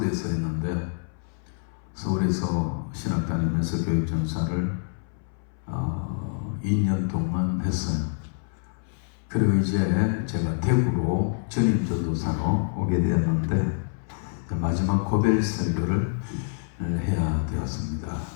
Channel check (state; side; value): silent; right; 61 dB below the other